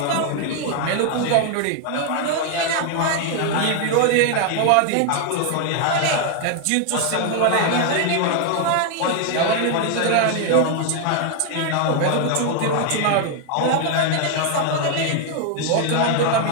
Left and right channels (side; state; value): both; different; correlation 0.00